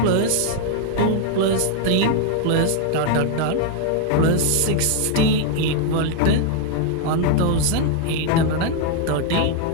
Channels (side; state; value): both; different; correlation 0.00